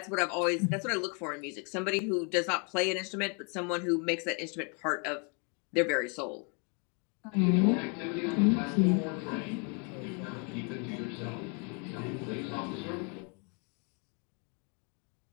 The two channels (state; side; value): quieter; right; 36.0 dB